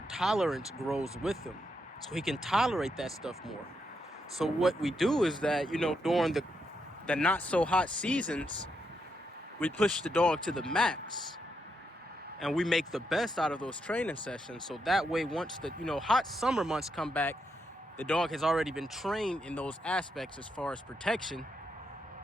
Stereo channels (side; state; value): both; normal; correlation 0.81